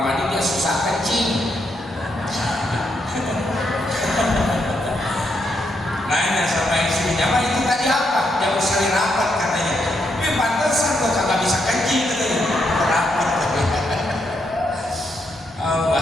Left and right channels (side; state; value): both; normal; correlation 0.79